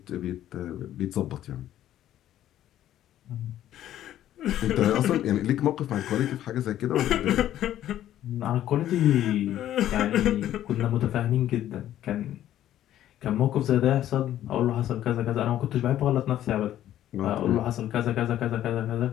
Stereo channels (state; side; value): quieter; right; 12.3 dB